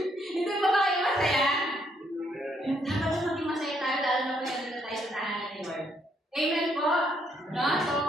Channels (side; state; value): both; normal; correlation 0.72